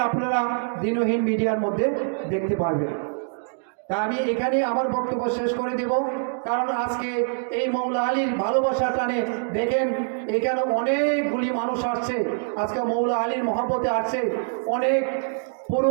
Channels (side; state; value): left; silent; digital silence